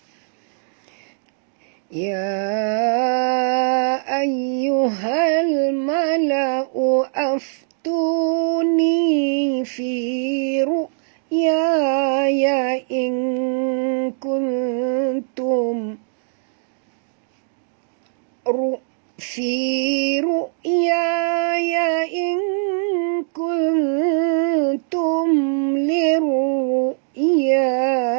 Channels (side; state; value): left; silent; digital silence